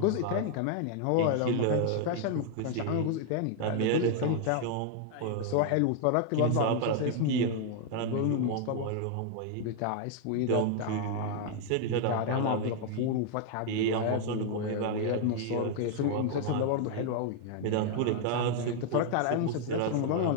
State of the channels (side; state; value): both; different; correlation 0.00